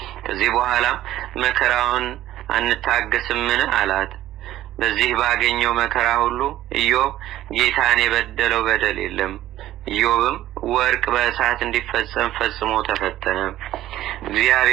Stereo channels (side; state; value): left; quieter; 13.8 dB